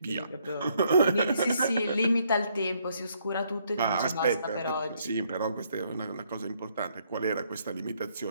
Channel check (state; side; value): inverted; both; correlation -0.70